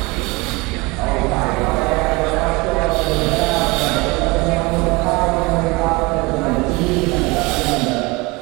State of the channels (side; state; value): left; quieter; 25.0 dB